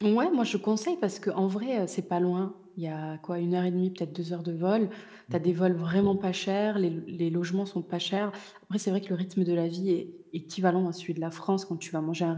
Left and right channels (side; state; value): both; identical; correlation 1.00